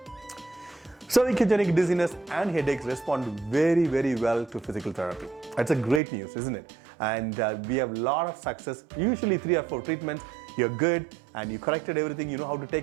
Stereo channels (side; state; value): left; drops out; at 6.0 s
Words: Cervicogenic dizziness and headaches respond very, very well to physical therapy. That's a great news, isn't it? And we have a lot of success, usually 3 or 4 treatments. You're good and you corrected everything, you know how to